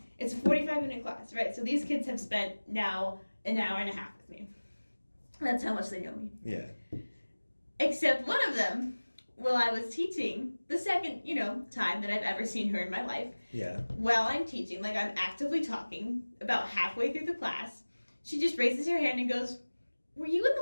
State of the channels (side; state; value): both; inverted; correlation -1.00